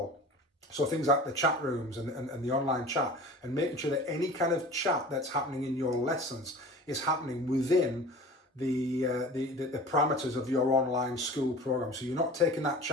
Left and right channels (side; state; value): both; normal; correlation 0.39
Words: So things like the chat rooms and the online chat, and making sure that any kind of chat that's happening in your lessons is happening within the parameters of your online school program. So you're not taking that